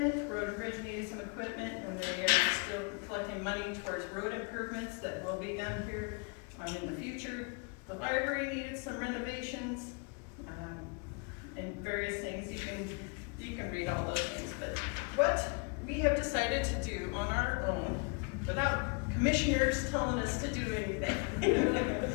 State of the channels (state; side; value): quieter; right; 33.7 dB